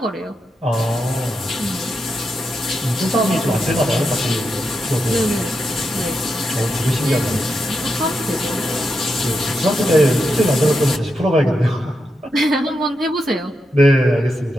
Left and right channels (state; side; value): normal; both; correlation 0.85